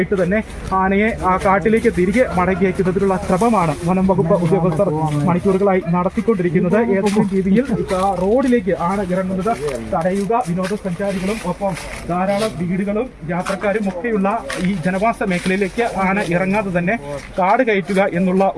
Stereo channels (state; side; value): identical; both; correlation 1.00